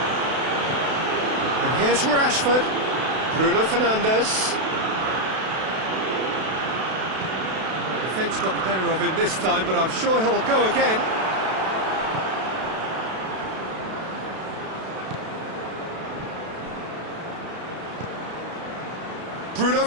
And here's Rashford. Bruno Fernandes. The defence got the better of him this time, but I'm sure he'll go again. Bruno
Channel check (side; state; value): left; late; 32 ms